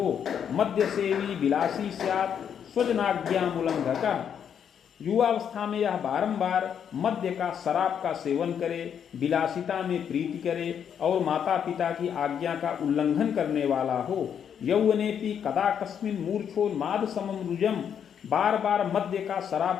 मद्य सेवी विलासी स्यात् स्वजनाज्ञामुल्लंघका, युवावस्था में यह बारंबार मद्य का, शराब का सेवन करे, विलासिता में प्रीति करे और माता पिता की आज्ञा का उल्लंघन करने वाला हो। यौवनेपि कदा कस्मिन् मूर्छोन्माद समम रुजम, बार बार मद्य का,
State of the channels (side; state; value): right; quieter; 8.2 dB